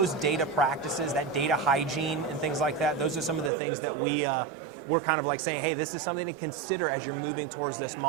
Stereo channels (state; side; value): drops out; left; at 3.5 s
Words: data practices, that data hygiene and things like that, those are some of the things that we're kind of like saying, hey, this is something to consider as you're moving towards this